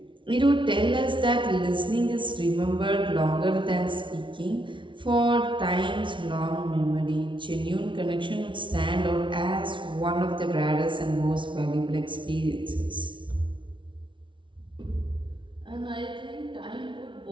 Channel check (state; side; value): late; left; 0.24 ms